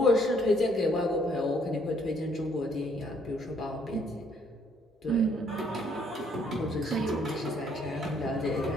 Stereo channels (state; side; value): normal; both; correlation 0.66